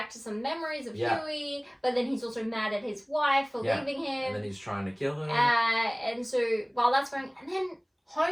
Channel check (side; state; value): both; identical; correlation 1.00